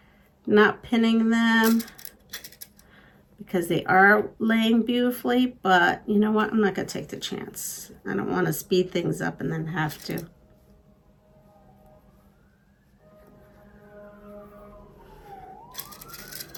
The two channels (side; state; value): both; identical; correlation 1.00